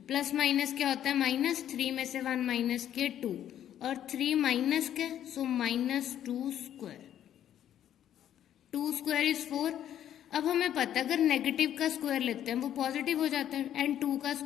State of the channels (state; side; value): quieter; right; 10.7 dB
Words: plus minus क्या होता है minus, 3 में से 1 माइनस के 2 और 3 माइनस के, so minus 2 square. 2 square is 4. अब हमें पता है अगर नेगेटिव का स्क्वायर लेते हैं वो पॉजिटिव हो जाता है एंड 2 का